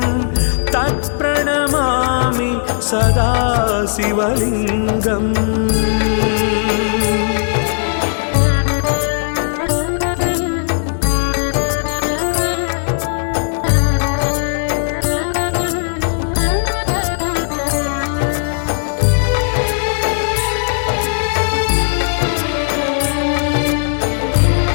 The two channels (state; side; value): silent; right; digital silence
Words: तत्प्रणमामि सदा शिवलिंगं